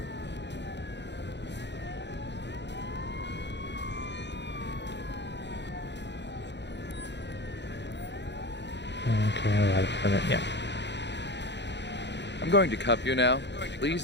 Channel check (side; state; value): right; late; 0.51 ms